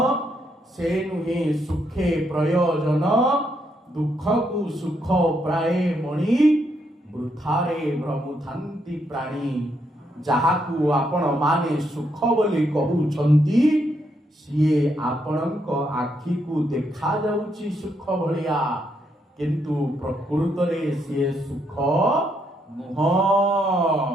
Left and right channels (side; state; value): both; normal; correlation 0.76